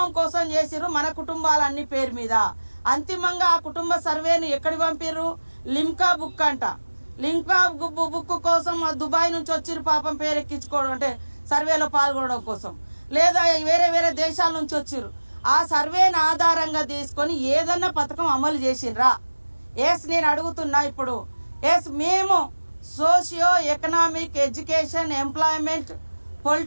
కోసం చేసిర్రు, మన కుటుంబాలన్ని పేరు మీద. అంతిమంగా ఆ కుటుంబ సర్వేను ఎక్కడికి పంపిర్రు? లిమ్కా బుక్ అంట. లిమ్కా బుక్ కోసం దుబాయ్ నుంచి వచ్చిర్రు పాపం పేరు ఎక్కించుకోవడం అంటే సర్వేలో పాల్గొనడం కోసం, లేదా వేరే దేశాల నుంచి వచ్చిర్రు. ఆ సర్వేను ఆధారంగా తీసుకొని ఏదన్నా పథకం అమలు చేసిండ్రా? నేను అడుగుతున్నా ఇప్పుడు. మేము socio economic education employment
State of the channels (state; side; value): inverted; both; correlation -1.00